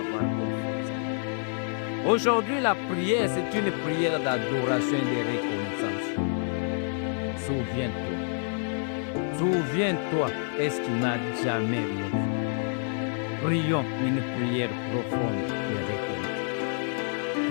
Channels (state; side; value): silent; right; 59 dB below the other